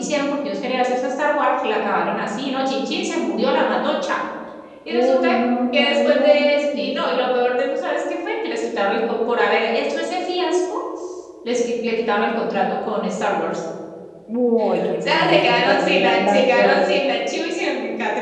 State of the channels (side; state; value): both; identical; correlation 1.00